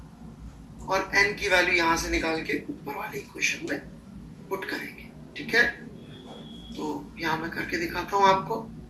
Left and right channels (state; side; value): identical; both; correlation 1.00